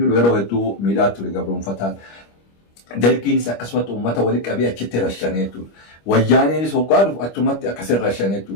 yeroo hedduu miidhaa ture gabroonfataan. Dalgiinis akkasumatti uummata walitti qabee achitti rashanee jechuudha. Wayyaaneenis hoggaa dhufu achumatti akkasitti rashanee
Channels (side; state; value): right; late; 25 ms